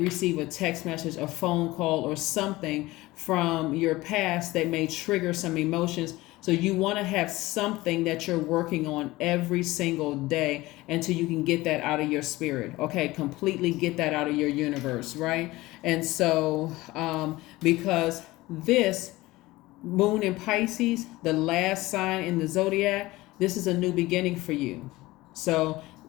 a text message, a phone call, or something from your past that may trigger some emotions. So you want to have something that you're working on every single day until you can get that out of your spirit. Okay, completely get that out of your universe, right? And so because this moon in Pisces, the last sign in the zodiac, this is a new beginning for you. So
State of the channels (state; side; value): quieter; right; 19.2 dB